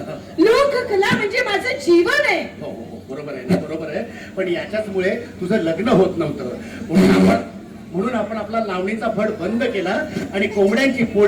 लोककला म्हणजे माझं जीवन आहे. हो हो बरोबर आहे ना, बरोबर आहे. पण याच्याचमुळे तुझं लग्न होत नव्हतं, म्हणून आपण आपला लावणीचा फड बंद केला आणि कोंबड्यांची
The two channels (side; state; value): both; identical; correlation 1.00